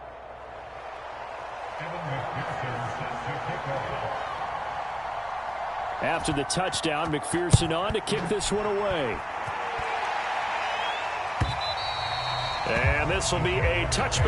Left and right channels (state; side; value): identical; both; correlation 1.00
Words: After the touchdown, McPherson on to kick this one away. And this will be a